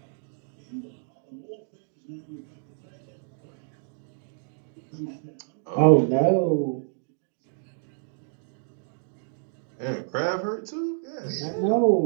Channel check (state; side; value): silent; left; digital silence